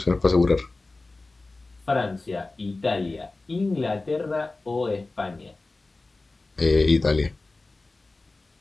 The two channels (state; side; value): quieter; right; 3.3 dB